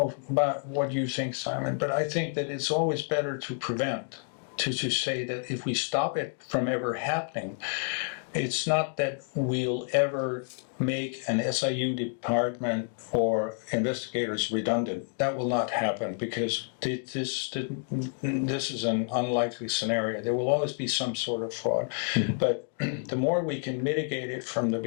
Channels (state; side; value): silent; right; 58 dB below the other